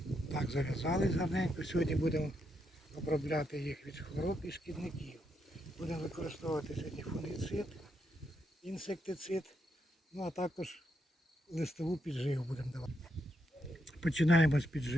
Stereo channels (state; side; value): normal; both; correlation 0.80